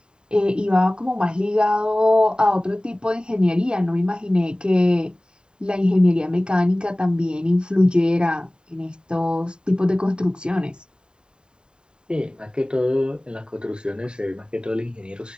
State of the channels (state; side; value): late; left; 0.048 ms